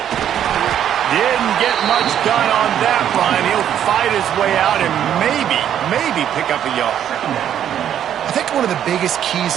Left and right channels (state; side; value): quieter; left; 10.0 dB